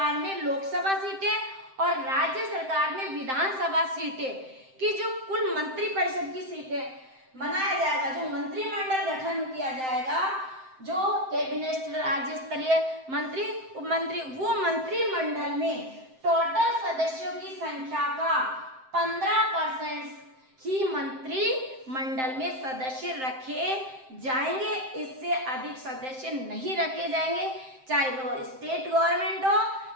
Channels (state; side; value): late; left; 7.7 ms